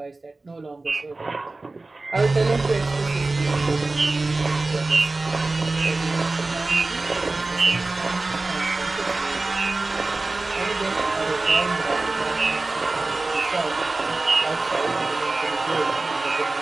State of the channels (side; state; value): left; quieter; 3.2 dB